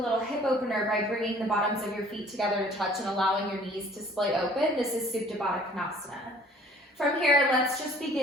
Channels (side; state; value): both; normal; correlation 0.53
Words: hip opener by bringing the bottoms of your feet together to touch and allowing your knees to splay open. This is Supta Baddha Konasana. From here, let's just